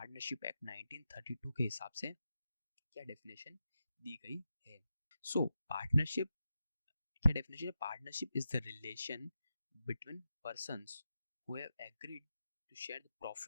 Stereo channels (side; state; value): both; inverted; correlation -0.89